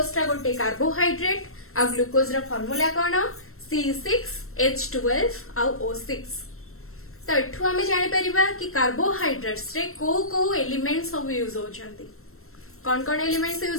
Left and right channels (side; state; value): right; late; 0.62 ms